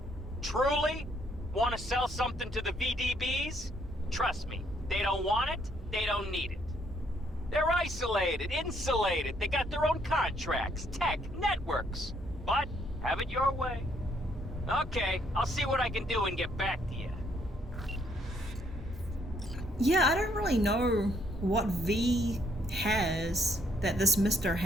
Truly? Want to sell something to the VDBs? Trust me, they don't want it, they don't need it. They're isolated, insulated, they got their own contracts, tech, networks. But, have it your way. Okay, I'll see what I can do and get back to you. Yeah, I don't really know what V has that this Mr.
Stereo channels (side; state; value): both; normal; correlation 0.70